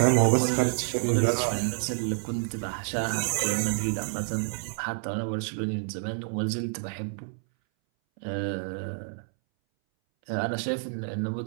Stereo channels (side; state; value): left; silent; 59 dB below the other